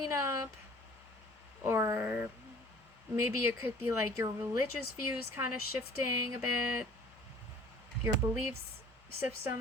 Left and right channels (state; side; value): normal; both; correlation 0.50